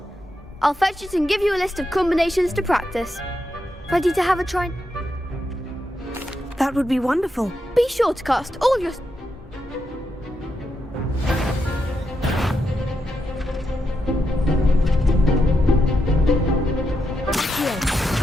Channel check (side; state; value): both; normal; correlation 0.84